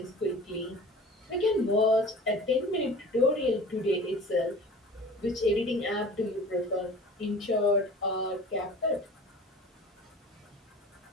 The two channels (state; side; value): normal; both; correlation 0.41